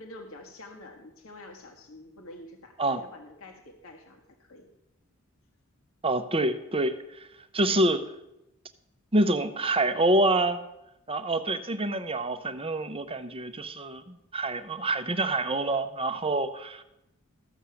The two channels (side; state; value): both; normal; correlation 0.27